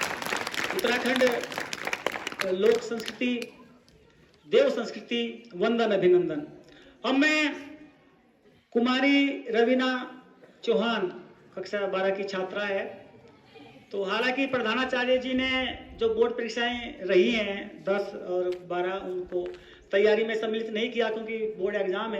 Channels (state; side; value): identical; both; correlation 1.00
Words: उत्तराखंड लोक संस्कृति, देव संस्कृति, वंदन, अभिनंदन। अब मैं कुमारी रवीना चौहान कक्षा 12 की छात्रा है। तो हालांकि प्रधानाचार्य जी ने जो बोर्ड परीक्षाएं रही हैं 10 और 12, उनको तैयारी में सम्मिलित नहीं किया क्योंकि बोर्ड एग्जाम